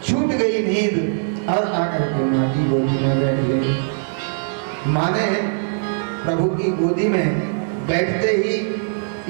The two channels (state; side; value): silent; left; digital silence